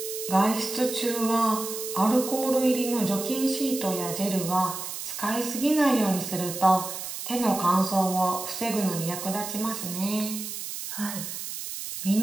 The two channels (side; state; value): right; noise; hiss, 7 dB below the sound